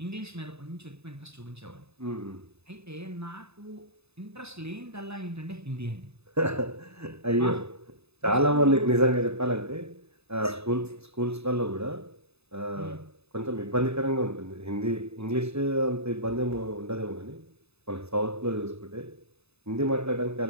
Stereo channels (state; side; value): late; left; 0.79 ms